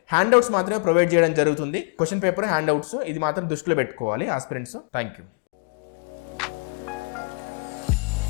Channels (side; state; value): right; quieter; 37.4 dB